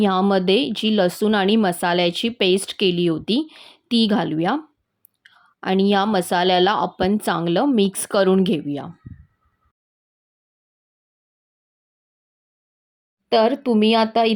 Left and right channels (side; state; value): both; identical; correlation 1.00